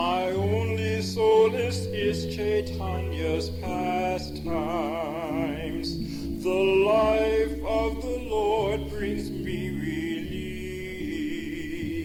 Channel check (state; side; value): identical; both; correlation 1.00